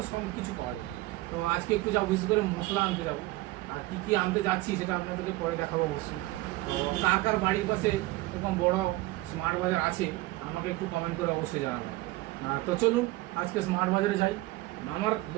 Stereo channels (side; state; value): left; quieter; 19.2 dB